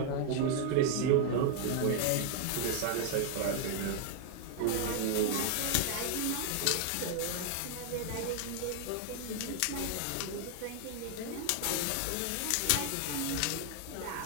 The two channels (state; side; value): different; both; correlation 0.00